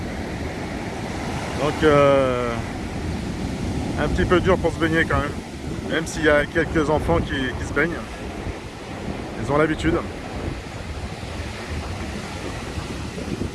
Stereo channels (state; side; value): identical; both; correlation 1.00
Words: Donc un petit peu dur pour se baigner quand même s'il y a quelques enfants qui se baignent. Ils ont l'habitude.